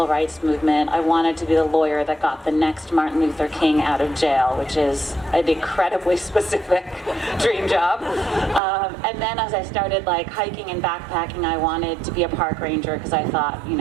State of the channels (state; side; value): drops out; left; at 8.6 s